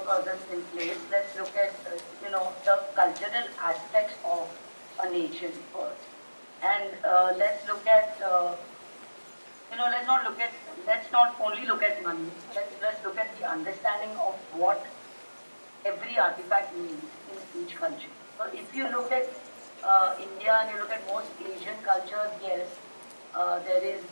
in place. Let's look at the cultural aspects of a nation first, and let's look at let's not only look at money. Let's look at the understanding of what every artifact means in each country. So if you look at India and you look at most Asian cultures, yes, there is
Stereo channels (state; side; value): inverted; both; correlation -1.00